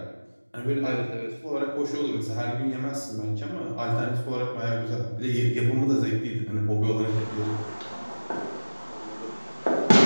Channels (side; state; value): both; inverted; correlation -1.00